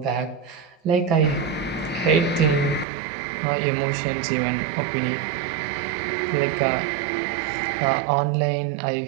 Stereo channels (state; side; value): drops out; left; at 2.9 s